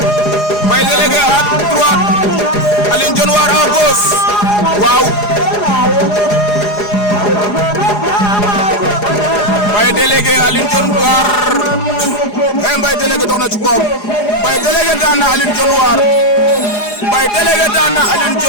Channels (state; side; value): late; right; 4.9 ms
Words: Mbaye délégué à droite Aline Dione War à gauche waaw Mbaye délégué Aline Dione War Mbaye délégué dox na ci koom Mbaye délégué daan na Aline Dione War Mbaye délégué daan na Aline